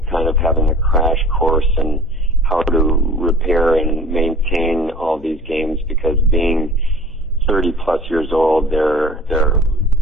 kind of having a crash course in how to repair and maintain all these games, because being 30+ plus years old. They're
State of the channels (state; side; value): noise; left; hum, 22 dB below the sound